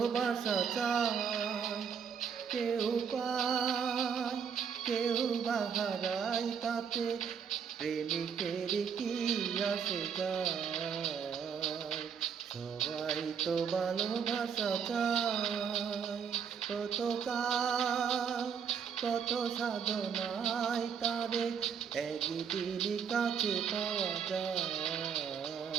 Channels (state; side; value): quieter; left; 7.0 dB